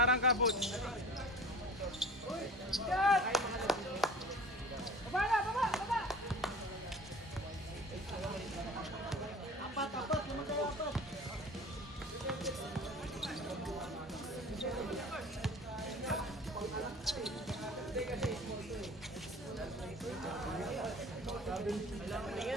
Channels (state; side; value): normal; both; correlation 0.42